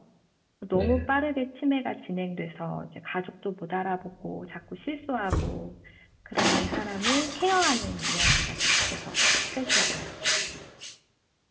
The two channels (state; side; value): identical; both; correlation 1.00